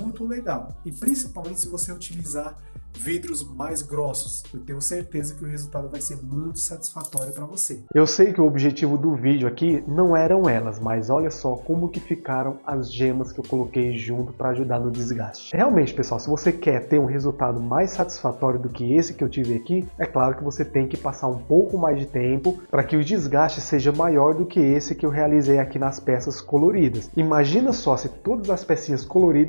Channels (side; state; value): both; inverted; correlation -1.00